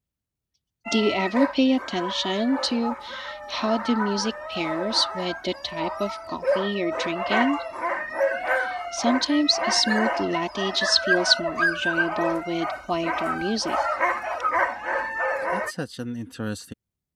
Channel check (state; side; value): identical; both; correlation 1.00